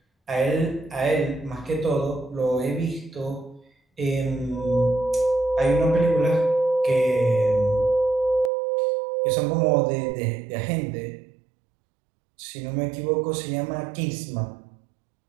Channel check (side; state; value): left; drops out; at 8.5 s